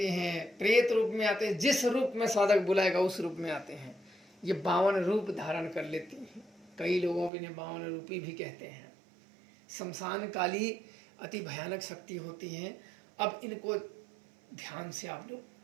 हैं, प्रेत रूप में आते हैं, जिस रूप में साधक बुलाएगा उस रूप में आते हैं। ये 52 रूप धारण कर लेती हैं। कई लोगों को इन्हें 52 रूपी भी कहते हैं। शमशान काली अति भयानक शक्ति होती हैं। अब इनको ध्यान से आप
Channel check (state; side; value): drops out; left; at 7.3 s